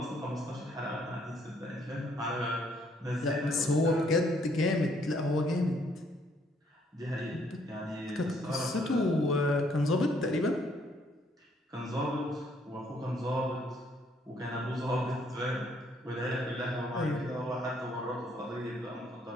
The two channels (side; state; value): both; normal; correlation 0.67